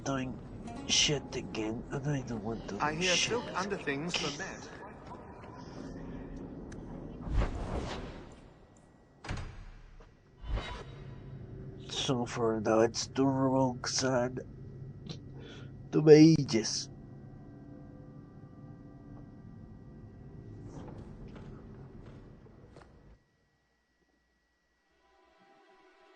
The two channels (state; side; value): identical; both; correlation 1.00